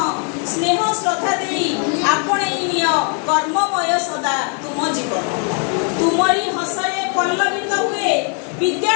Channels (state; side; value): quieter; right; 39.8 dB